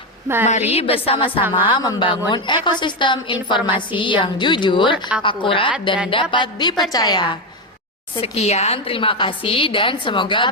Mari bersama-sama membangun ekosistem informasi yang jujur, akurat, dan dapat dipercaya. Sekian, terima kasih dan semoga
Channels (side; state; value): both; normal; correlation 0.09